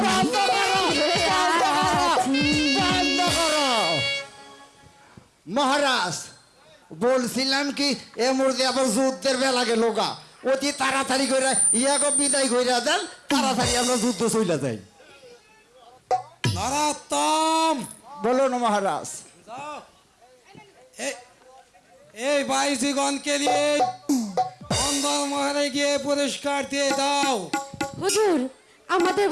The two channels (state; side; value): identical; both; correlation 1.00